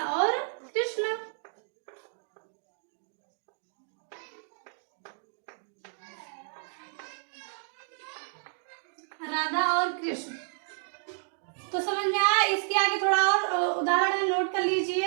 और कृष्ण। राधा और कृष्ण, तो समझ में आया? इसके आगे थोड़ा और उदाहरण नोट कर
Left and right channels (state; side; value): silent; left; digital silence